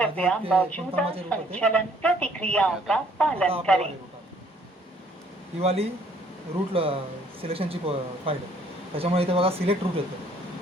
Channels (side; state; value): both; normal; correlation 0.61